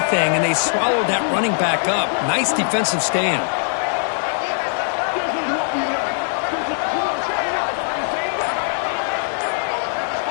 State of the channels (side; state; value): right; silent; 64 dB below the other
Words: and they swallowed that running back up. Nice defensive stand.